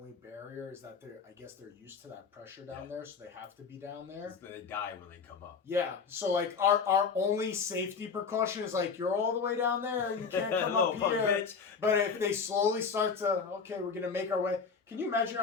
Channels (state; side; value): quieter; right; 5.6 dB